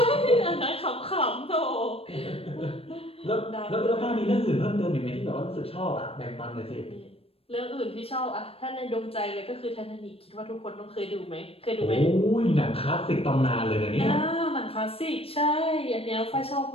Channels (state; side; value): late; right; 0.28 ms